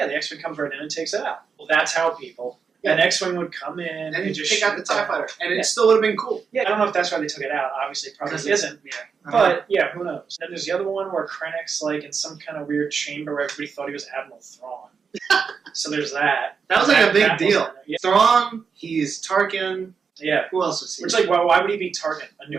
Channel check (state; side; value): quieter; left; 5.9 dB